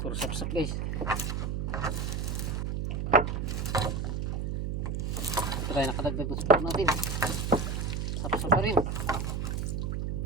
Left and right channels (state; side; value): noise; right; hum, 1 dB below the sound